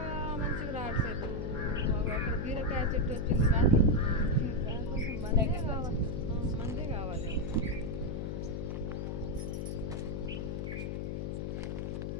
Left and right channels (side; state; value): left; noise; hum, 3 dB below the sound